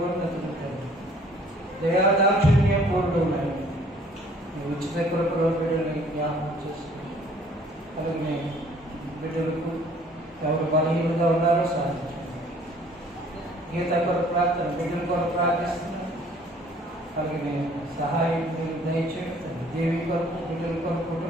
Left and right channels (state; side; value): normal; both; correlation 0.57